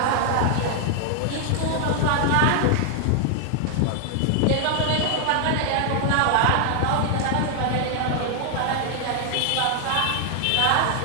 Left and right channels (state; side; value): different; both; correlation 0.00